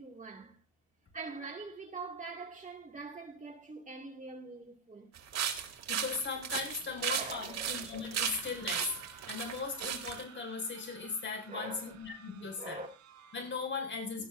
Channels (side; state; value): both; normal; correlation 0.01